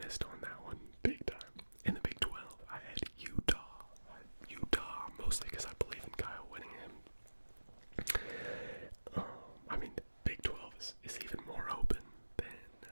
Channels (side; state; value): both; inverted; correlation -1.00